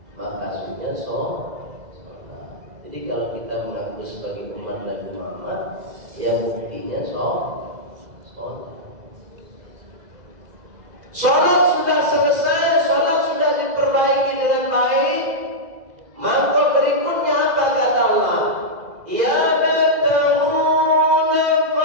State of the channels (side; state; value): left; late; 2.0 ms